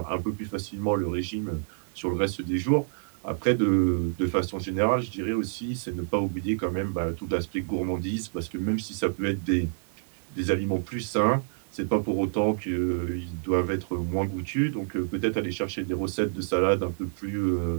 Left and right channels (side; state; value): left; silent; digital silence